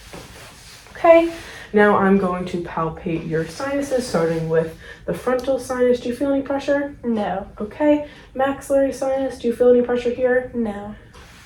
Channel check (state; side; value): identical; both; correlation 1.00